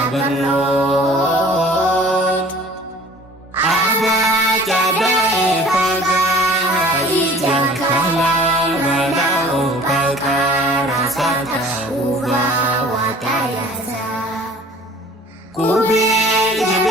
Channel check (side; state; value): both; normal; correlation 0.48